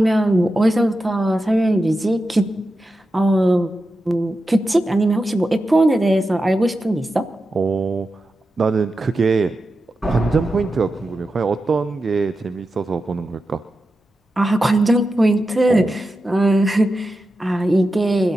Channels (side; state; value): both; normal; correlation 0.91